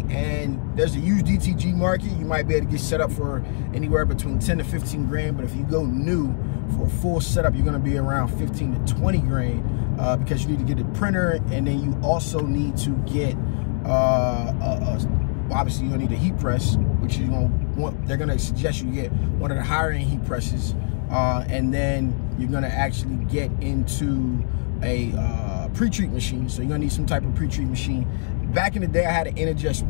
And there's a used DTG market. You might be able to get set up for anywhere between 10 to 15 grand, but if you go new for a full setup, you're going to be around 15 to 20 grand because you need to get a printer, and then you also need to get obviously you're gonna need a heat press, which you want. They're gonna suggest you get one of the higher end heat presses, and then you're gonna actually get into a pre-treat machine. So you're gonna need some type of pre-treat machine. Back in the day, I had an Inkjet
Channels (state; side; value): silent; right; 62 dB below the other